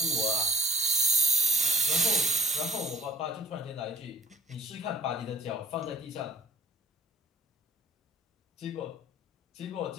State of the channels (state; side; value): normal; both; correlation 0.54